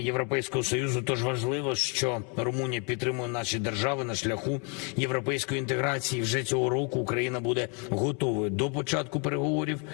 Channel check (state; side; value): quieter; right; 36.1 dB